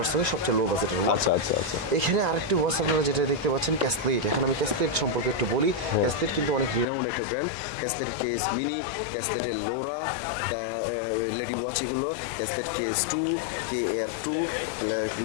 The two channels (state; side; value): drops out; right; at 6.9 s